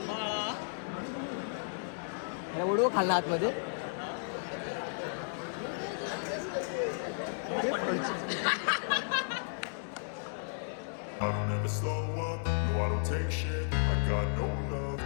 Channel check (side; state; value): right; silent; digital silence